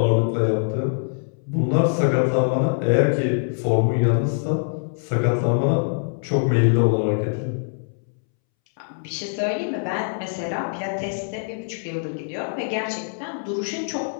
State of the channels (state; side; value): silent; right; 63 dB below the other